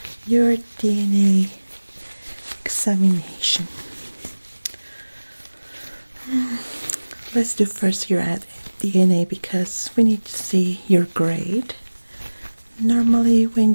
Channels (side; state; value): both; inverted; correlation -1.00